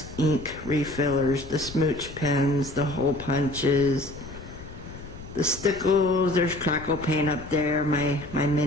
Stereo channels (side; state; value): left; noise; rumble, 14 dB below the sound